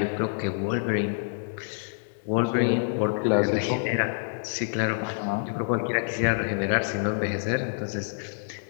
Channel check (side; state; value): right; silent; digital silence